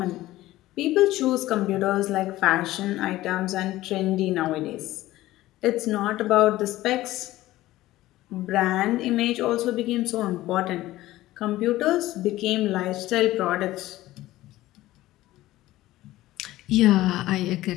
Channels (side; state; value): right; quieter; 16.3 dB